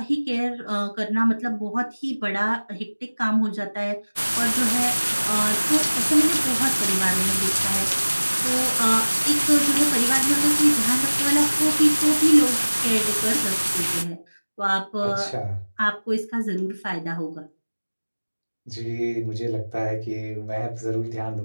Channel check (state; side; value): inverted; both; correlation -1.00